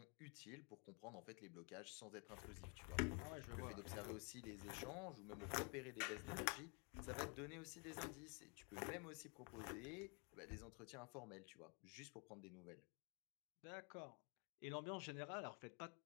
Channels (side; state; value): right; quieter; 33.5 dB